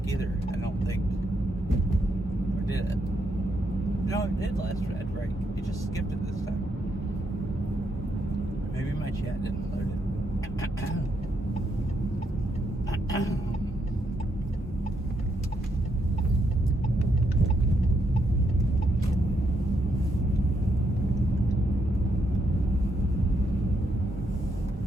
either, I don't think. Or did it? No, it did last ad break. It just skipped it this time. Maybe my chat didn't load it.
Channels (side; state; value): both; normal; correlation 0.78